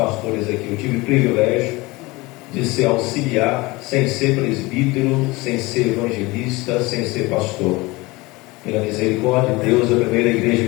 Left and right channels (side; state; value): right; quieter; 22.6 dB